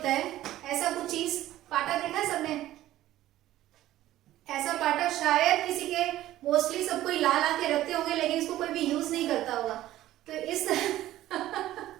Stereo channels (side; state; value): left; quieter; 14.4 dB